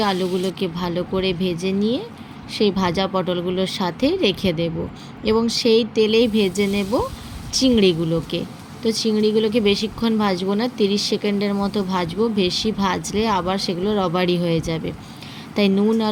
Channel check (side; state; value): both; identical; correlation 1.00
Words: আলুগুলোকে ভালো করে ভেজে নিয়ে সেই ভাজা পটলগুলোর সাথে রেখে দেব এবং সেই তেলেই ভেজে নেব চিংড়িগুলোকে। তো চিংড়িগুলোকে বেশিক্ষণ ভাজবো না, 30 সেকেন্ডের মতো ভাজবো। বেশি ভাজলে আবার সেগুলো রবারি হয়ে যাবে, তাই নুন